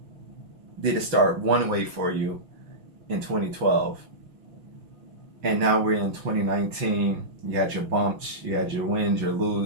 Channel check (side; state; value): left; late; 6.0 ms